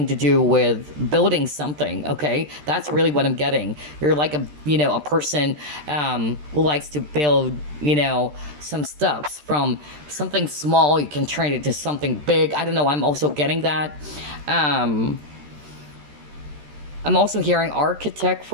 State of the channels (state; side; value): late; left; 13 ms